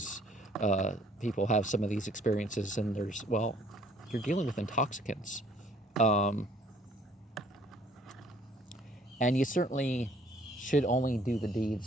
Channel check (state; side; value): normal; both; correlation 0.59